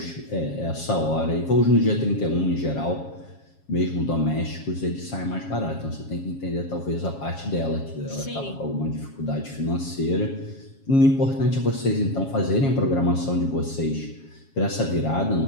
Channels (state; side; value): late; right; 7.3 ms